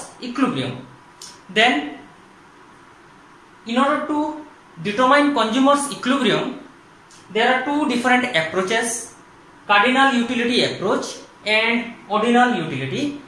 equilibrium. Then in order to determine consumer's equilibrium, there are two different approaches: cardinal utility approach and ordinal utility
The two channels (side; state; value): both; identical; correlation 1.00